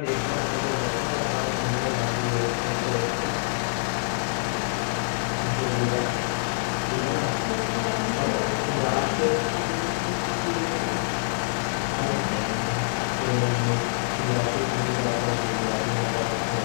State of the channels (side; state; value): right; silent; digital silence